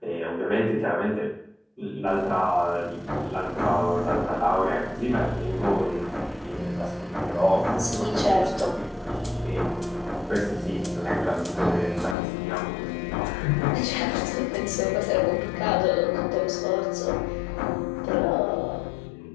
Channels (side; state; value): right; drops out; at 12.2 s